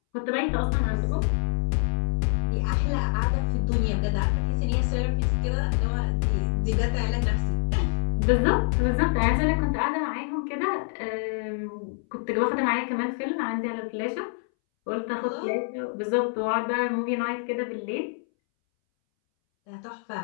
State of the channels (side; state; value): right; silent; 61 dB below the other